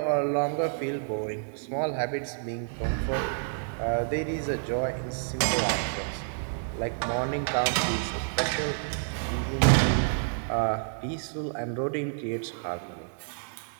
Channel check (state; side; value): silent; left; 59 dB below the other